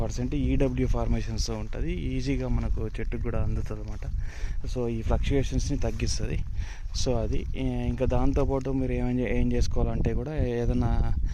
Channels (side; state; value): both; identical; correlation 1.00